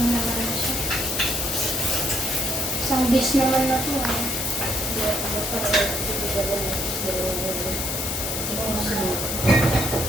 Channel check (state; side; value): noise; left; hiss, 3 dB below the sound